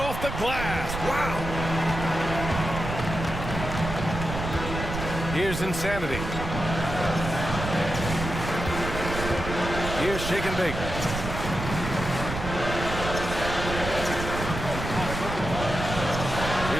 the glass. Wow. Here's Insanity. Here's Shake and Bake.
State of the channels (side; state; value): right; noise; rumble, 6 dB below the sound